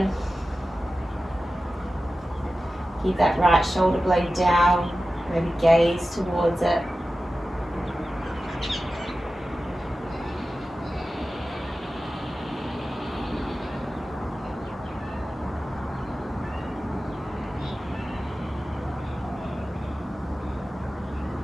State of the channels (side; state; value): both; normal; correlation 0.94